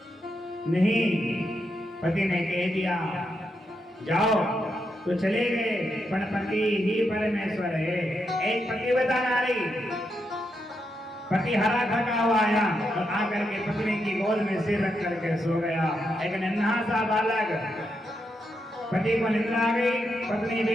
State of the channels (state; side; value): normal; both; correlation 0.83